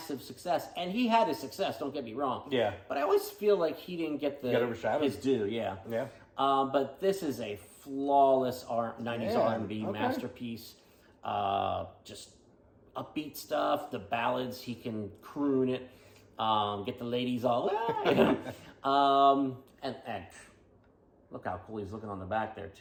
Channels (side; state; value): both; identical; correlation 1.00